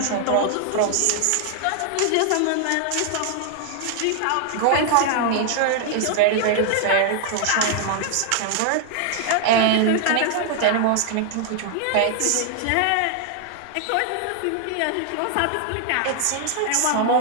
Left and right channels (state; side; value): different; both; correlation 0.00